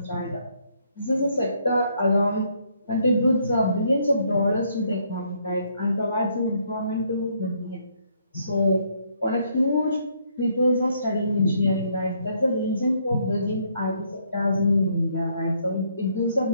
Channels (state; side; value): inverted; both; correlation -0.70